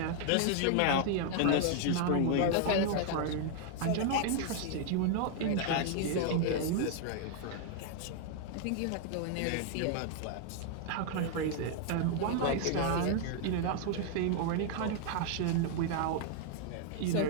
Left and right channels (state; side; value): different; both; correlation 0.00